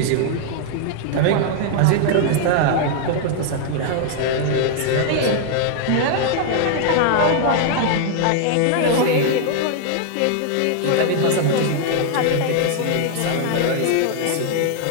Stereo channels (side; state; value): both; different; correlation 0.00